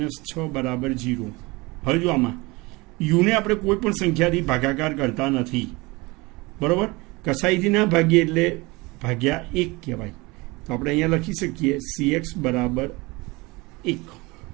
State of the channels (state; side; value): quieter; left; 24.0 dB